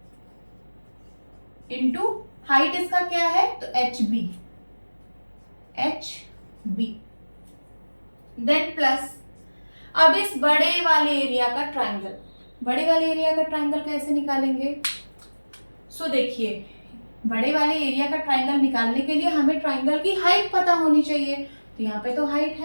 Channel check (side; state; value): both; inverted; correlation -1.00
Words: इंटू हाइट इसका क्या है? तो एच बी, देन प्लस अब इस बड़े वाले एरिया का ट्राइंगल कैसे निकालेंगे? सो देखिए, बड़े वाले एरिया का ट्राइंगल निकालने के लिए हमें ट्राइंगल की हाइट पता होनी चाहिए, तो यहाँ पे तो हाइट